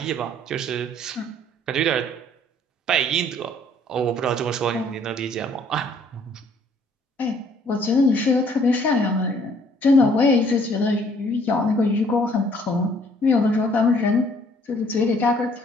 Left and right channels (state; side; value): normal; both; correlation 0.61